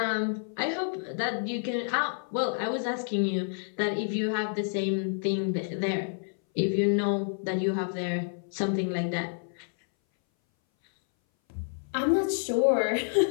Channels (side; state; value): right; silent; 59 dB below the other